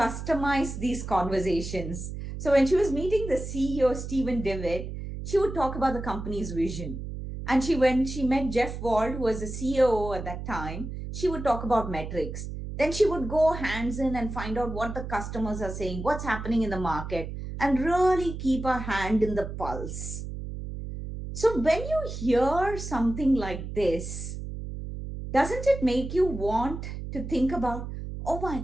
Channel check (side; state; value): right; noise; hum, 7 dB below the sound